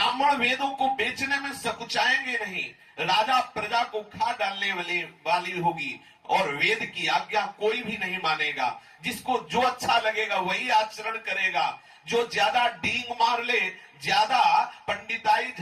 वेदों को बेचने में सकुचाएंगे नहीं। राजा प्रजा को खा डालने वाली होगी और वेद की आज्ञा कोई भी नहीं मानेगा। जिसको जो अच्छा लगेगा वही आचरण करेगा। जो ज्यादा डींग मार ले, ज्यादा पंडिताई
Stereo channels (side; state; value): both; identical; correlation 1.00